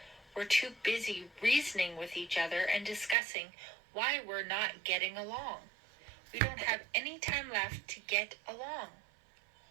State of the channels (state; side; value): drops out; left; at 3.2 s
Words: We're too busy reasoning with each other and discussing why we're not getting along. We don't have any time left to get along.